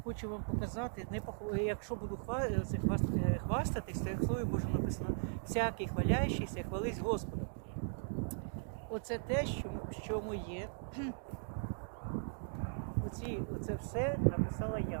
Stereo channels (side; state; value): left; silent; digital silence